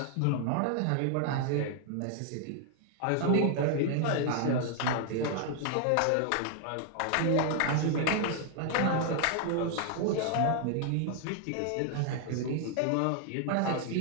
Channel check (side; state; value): both; different; correlation 0.00